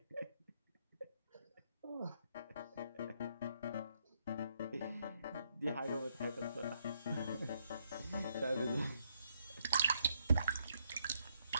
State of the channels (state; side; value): inverted; both; correlation -0.74